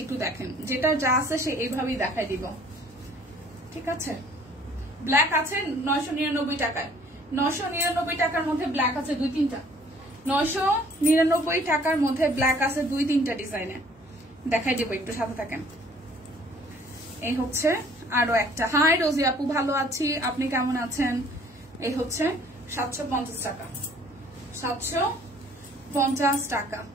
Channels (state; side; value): normal; both; correlation 0.56